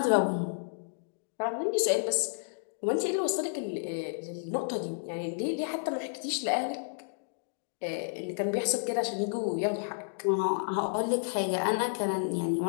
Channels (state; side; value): silent; right; digital silence